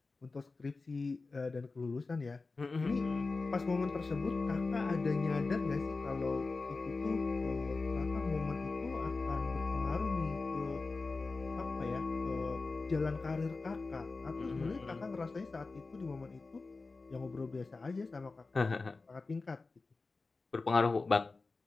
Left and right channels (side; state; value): right; quieter; 3.8 dB